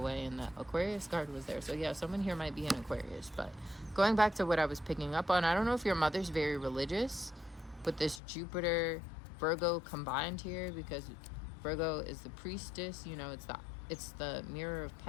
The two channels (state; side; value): drops out; right; at 8.2 s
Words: and the Aquarius card was there. So yeah, someone here might be an Aquarius. But going back to what I was picking up on, I don't know if your mother's very religious, but this Jupiter Virgo combined here, because Virgo is the priestess, you know, it's the mirror of